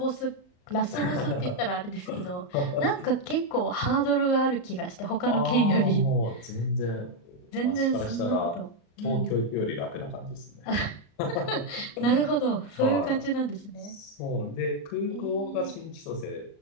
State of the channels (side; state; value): right; late; 35 ms